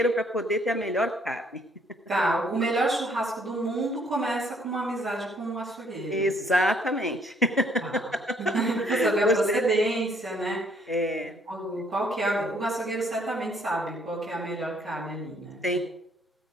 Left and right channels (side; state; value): both; normal; correlation 0.65